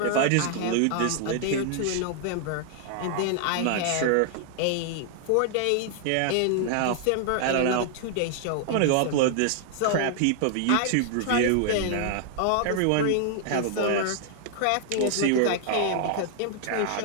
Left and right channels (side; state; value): both; different; correlation 0.00